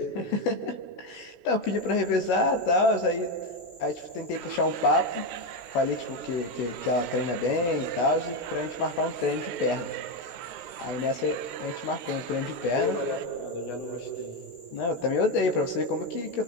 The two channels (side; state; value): right; late; 17 ms